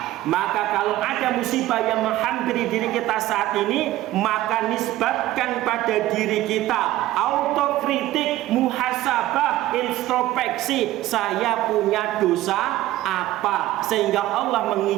Maka kalau ada musibah yang menghampiri diri kita saat ini, maka nisbatkan pada diri kita. Autokritik, muhasabah, introspeksi, saya punya dosa apa, sehingga Allah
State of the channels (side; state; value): left; quieter; 15.5 dB